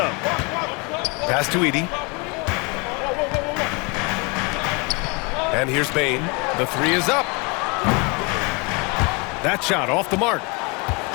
Pass to Edey. And here's Bane. The three is up. That shot off the mark.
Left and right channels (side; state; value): right; quieter; 30.2 dB